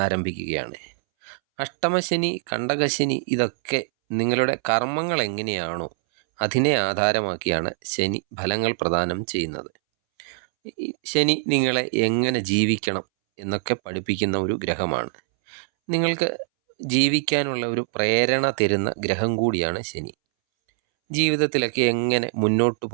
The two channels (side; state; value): left; silent; 63 dB below the other